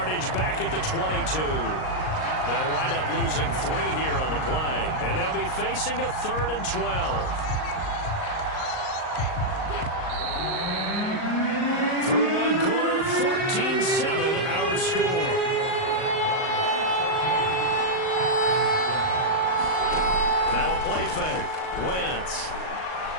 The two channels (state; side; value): late; right; 38 ms